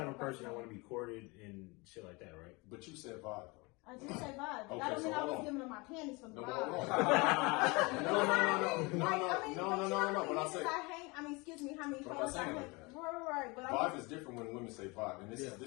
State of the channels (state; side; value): quieter; right; 26.5 dB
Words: of person that want to be courted and shit like that, right? But you said vibe, though. I just said vibe. Okay, That don't mean so I was hold on. giving them my panties for the No, vibe. no. But I say, excuse me, how many But I'm clothes I saying had? like that. Right. But vibe is different when women say vibe, and this